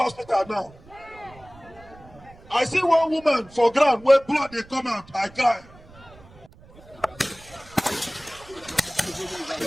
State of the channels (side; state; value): right; noise; rumble, 23 dB below the sound